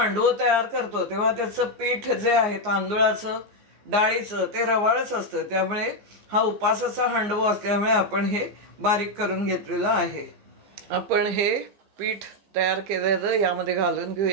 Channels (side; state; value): left; late; 14 ms